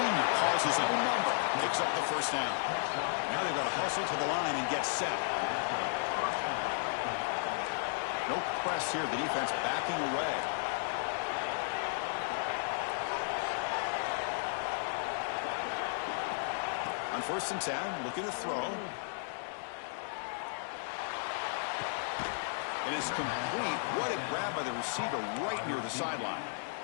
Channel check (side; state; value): right; silent; digital silence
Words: calls his own number. Picks up the 1st down. Now they've got to hustle to the line and get set. No press here. The defense backing away. On 1st and 10, looking to throw. It is complete. What a grab by the receiver right near the sideline.